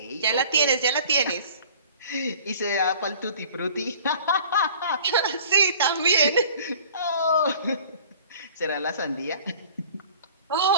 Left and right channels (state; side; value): inverted; both; correlation -0.48